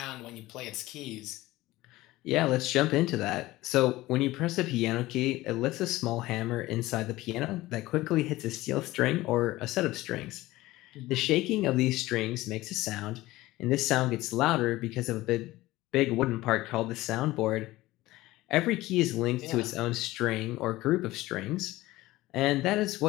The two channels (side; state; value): right; quieter; 18.0 dB